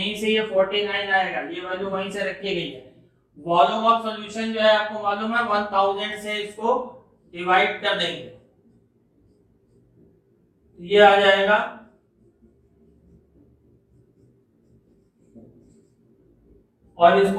से ये 49 आएगा, ये वैल्यू वहीं से रखी गई है। वॉल्यूम ऑफ सॉल्यूशन जो है आपको मालूम है 1000 से इसको डिवाइड कर देंगे, ये आ जाएगा और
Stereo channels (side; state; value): both; identical; correlation 1.00